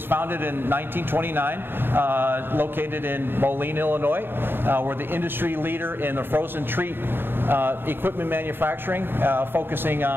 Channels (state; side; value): late; left; 0.10 ms